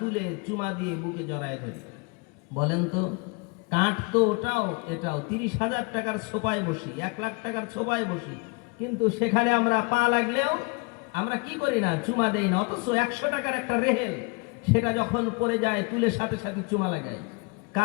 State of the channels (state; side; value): quieter; right; 30.8 dB